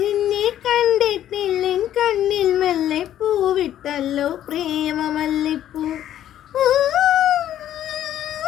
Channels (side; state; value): right; quieter; 11.6 dB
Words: നിന്നെ കണ്ടിട്ടില്ലെൻ കണ്ണിൽ മെല്ലെ പൂവിട്ടല്ലോ പ്രേമമല്ലിപ്പൂ.